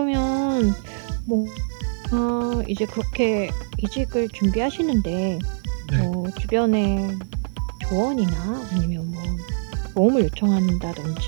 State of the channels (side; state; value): left; silent; 63 dB below the other